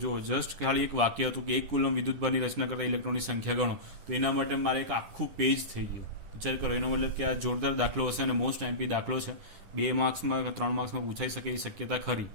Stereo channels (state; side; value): late; left; 10 ms